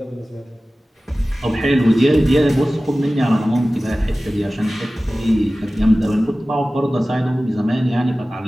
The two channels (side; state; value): both; normal; correlation 0.97